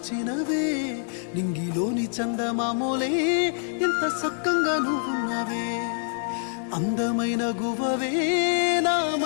నింగిలోని చందమామోలే ఎంత సక్కంగా నువ్వున్నవే. అందమైన గువ్వవే నా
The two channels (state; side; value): silent; right; 61 dB below the other